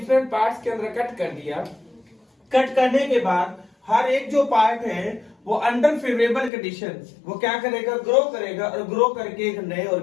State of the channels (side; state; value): right; drops out; at 6.5 s